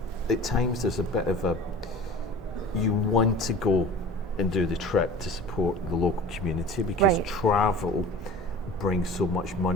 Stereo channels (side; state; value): both; normal; correlation 0.40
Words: at times there's a bit of you want to go and do the trip to support the local community because travel brings so much